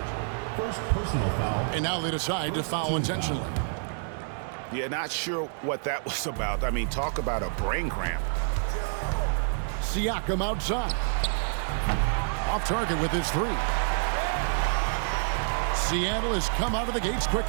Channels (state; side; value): silent; left; digital silence